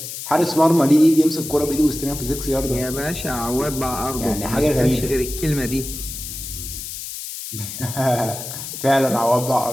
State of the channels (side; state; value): left; noise; hiss, 8 dB below the sound